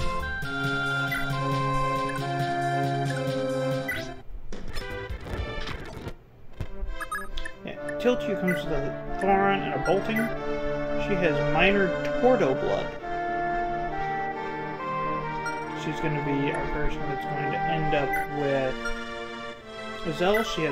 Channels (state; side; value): identical; both; correlation 1.00